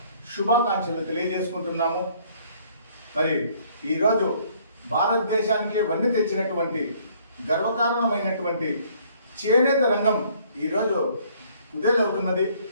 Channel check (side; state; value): both; inverted; correlation -0.61